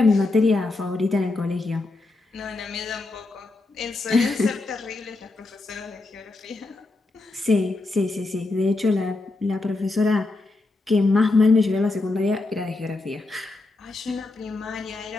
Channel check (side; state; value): right; quieter; 3.2 dB